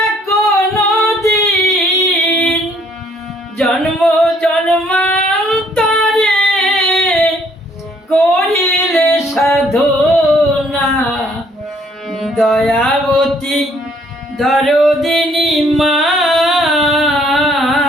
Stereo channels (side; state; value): both; normal; correlation 0.64